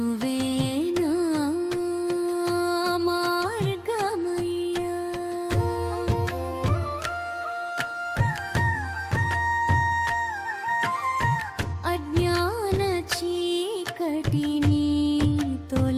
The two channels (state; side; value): identical; both; correlation 1.00